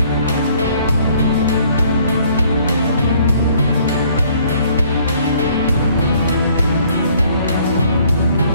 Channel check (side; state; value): both; inverted; correlation -0.61